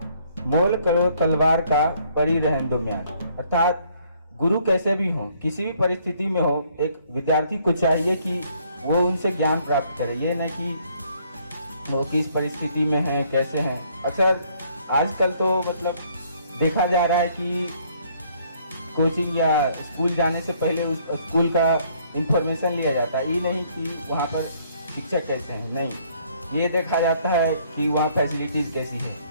मोल करो तलवार का परी रहन दो म्यान। अर्थात गुरु कैसे भी हो, किसी भी परिस्थिति में हो, एक विद्यार्थी को चाहिए कि वो उनसे ज्ञान प्राप्त करे, ये न कि वो किस परिस्थिति में है कैसे हैं। अक्सर आजकल तो मतलब देखा जा रहा है कि कोचिंग या स्कूल जाने से पहले उस स्कूल का इंफॉर्मेशन लिया जाता है, ये नहीं कि वहाँ पर शिक्षक कैसे हैं, नहीं, ये देखा जाता है कि वहाँ फैसिलिटीज़ कैसी है,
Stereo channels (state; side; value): inverted; both; correlation -0.64